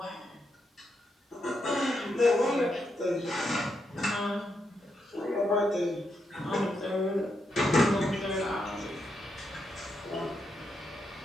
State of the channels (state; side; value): normal; both; correlation 0.82